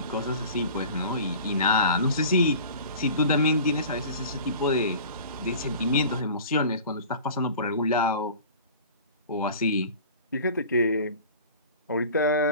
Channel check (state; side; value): inverted; both; correlation -0.41